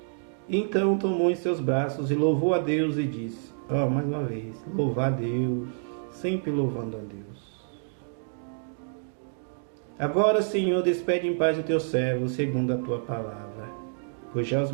Então tomou em seus braços e louvou a Deus e disse, mais uma vez, louvar a Deus, sempre louvando a Deus. Agora, Senhor, despede em paz o teu servo, segundo a tua palavra, pois já os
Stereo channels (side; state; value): left; silent; digital silence